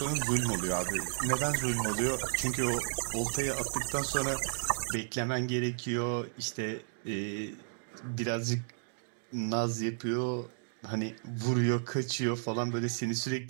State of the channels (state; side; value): silent; left; digital silence